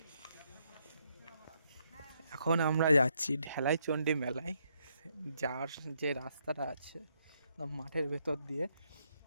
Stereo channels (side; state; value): both; inverted; correlation -0.76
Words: এখন আমরা যাচ্ছি ঢালাইচন্ডী মেলায়। যার যে রাস্তাটা আছে মাঠের ভেতর দিয়ে,